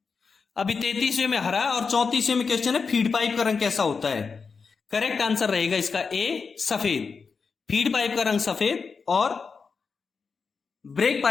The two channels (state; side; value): quieter; right; 5.2 dB